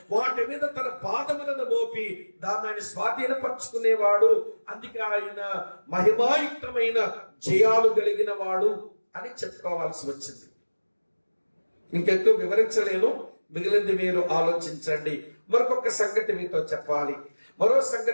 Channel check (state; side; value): inverted; both; correlation -1.00